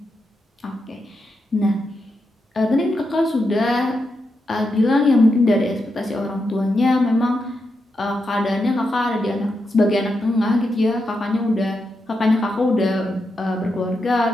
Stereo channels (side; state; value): both; normal; correlation 0.85